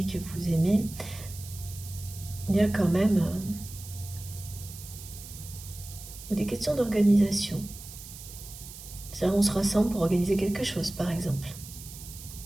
que vous aimez, il y a quand même des questions d'organisation. C'est-à-dire on se rassemble pour organiser quelque chose, par exemple.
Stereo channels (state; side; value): noise; right; hiss, 14 dB below the sound